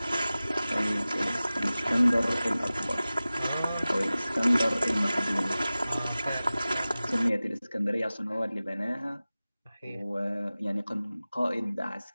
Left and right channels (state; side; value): inverted; both; correlation -0.97